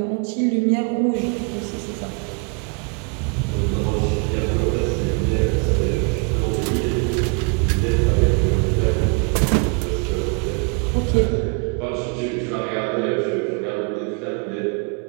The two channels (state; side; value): quieter; left; 34.9 dB